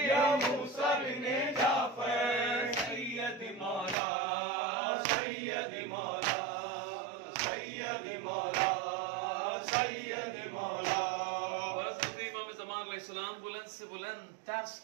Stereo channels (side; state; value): left; drops out; at 4.0 s